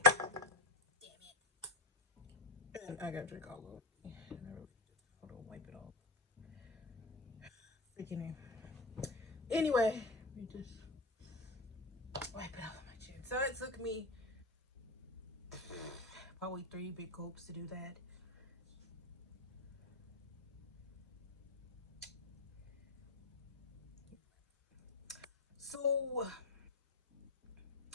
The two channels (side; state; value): right; quieter; 3.2 dB